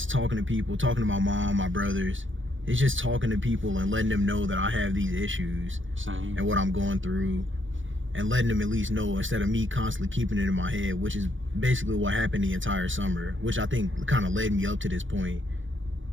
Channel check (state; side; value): late; left; 0.56 ms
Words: talking to people, talking to my mom, my brothers. It's just talking to people and letting them know that I have these issues. Same. And what I'm going through, and letting them at least know instead of me constantly keeping it in my head, which is basically what happened the entire summer, which I think kind of led me up to this point,